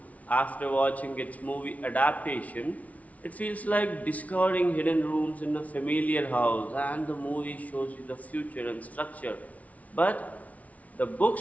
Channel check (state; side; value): late; right; 0.069 ms